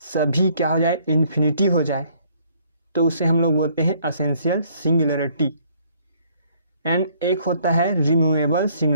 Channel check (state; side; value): inverted; both; correlation -0.63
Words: सभी क्या हो जाए, इन्फिनिटी हो जाए, तो उसे हम लोग बोलते हैं असेंशियल सिंगुलरिटी। एंड एक होता है रिमूवेबल